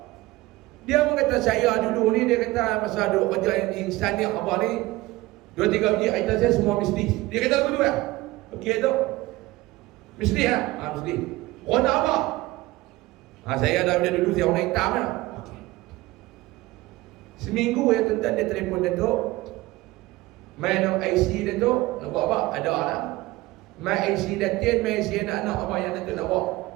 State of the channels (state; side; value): quieter; left; 19.1 dB